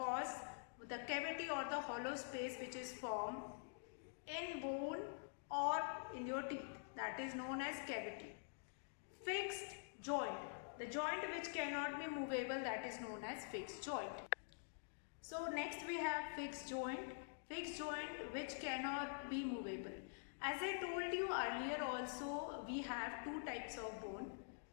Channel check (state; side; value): silent; right; digital silence